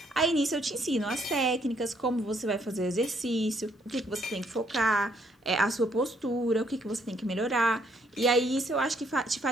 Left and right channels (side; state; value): both; normal; correlation 0.69